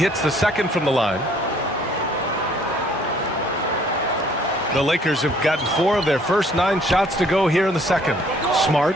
the second from the line. The Lakers have gotten 4 of their first 9 shots to go here in the second. Smart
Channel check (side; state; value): both; normal; correlation 0.60